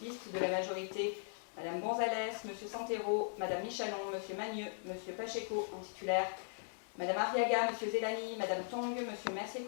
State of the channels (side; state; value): right; silent; digital silence